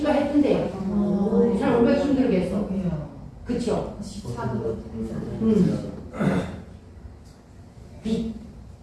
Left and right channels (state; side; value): identical; both; correlation 1.00